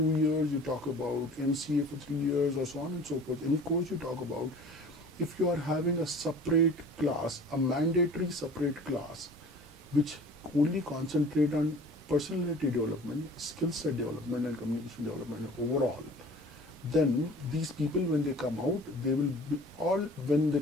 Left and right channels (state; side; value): normal; both; correlation 0.45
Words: years, you talk about MCA for 3 years, or so on and so forth, any course you talk about, if you are having a separate class, a mandatory separate class, which only concentrate on personality development, skill set development, and communication development overall, then these people, when they come out, they will be all, when they